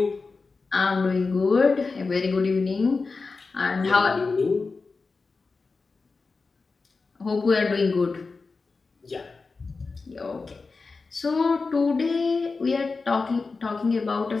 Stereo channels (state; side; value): quieter; right; 4.2 dB